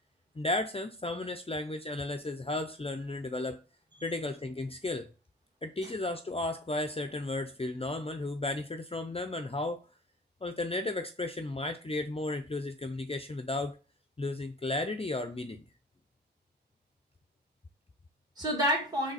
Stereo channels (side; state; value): both; normal; correlation 0.43